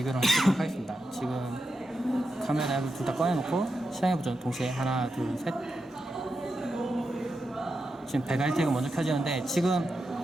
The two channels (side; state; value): both; normal; correlation 0.87